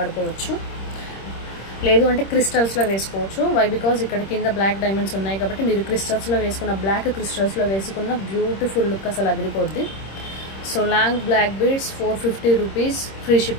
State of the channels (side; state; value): right; late; 26 ms